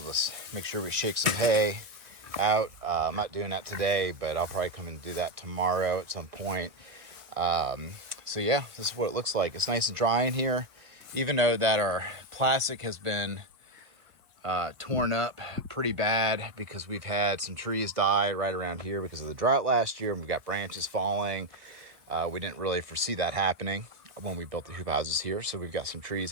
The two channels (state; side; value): late; left; 1.3 ms